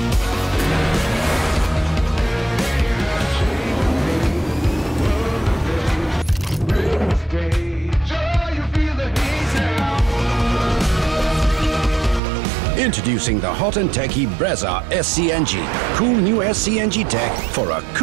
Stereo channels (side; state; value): left; drops out; at 12.2 s